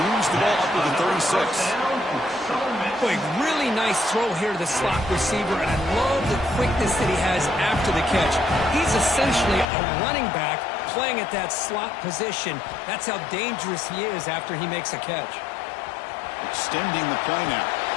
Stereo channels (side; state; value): right; drops out; at 9.7 s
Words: moves the ball up to the 36. Boy, really nice throw here to the slot receiver, and I love the quickness that he has after the catch. He's essentially a running back playing at that slot position. That's how dangerous he is after he makes a catch. Extending the play now.